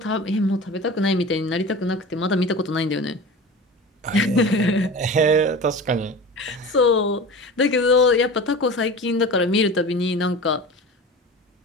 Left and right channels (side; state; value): both; normal; correlation 0.34